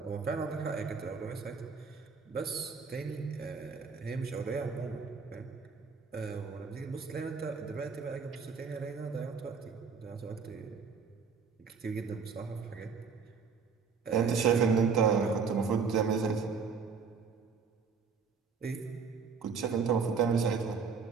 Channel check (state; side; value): quieter; left; 5.7 dB